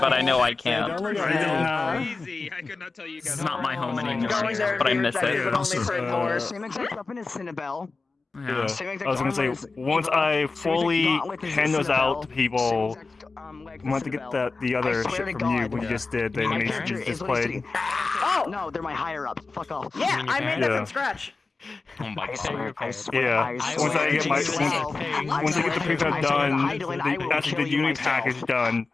I know I can't. Easy. I could not tell you guys. It's not my home anymore, Going there but I and miss being it. but only for an hour. Same exact weapon as Cinnabelle. Yeah. I was gonna say, once I fully hand those out to people, I want to get the other shit from you when you just did the animation you just played. Oh! No, they're my higher ups. Fuck off. Yeah, I made that from scratch. Oh my god. Yeah, once I get once I get the prefab done, actually the unit package done,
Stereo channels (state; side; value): quieter; right; 3.9 dB